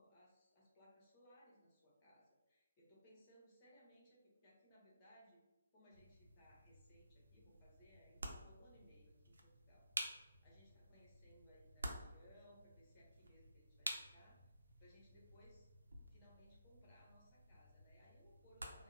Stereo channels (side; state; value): both; inverted; correlation -0.86